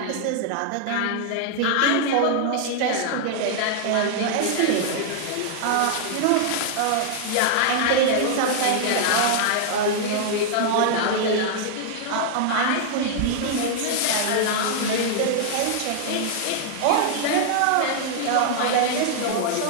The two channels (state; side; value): different; both; correlation -0.01